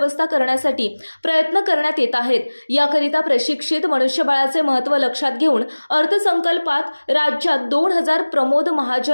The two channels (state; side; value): inverted; both; correlation -1.00